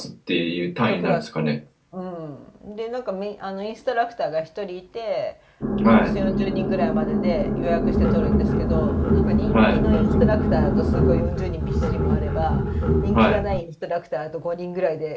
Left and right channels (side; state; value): both; identical; correlation 1.00